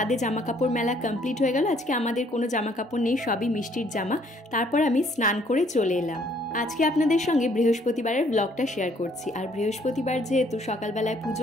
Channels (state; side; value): normal; both; correlation 0.64